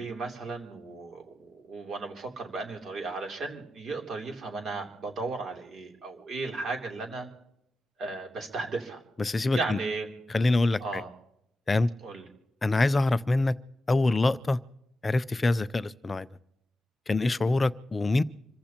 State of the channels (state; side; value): normal; both; correlation 0.93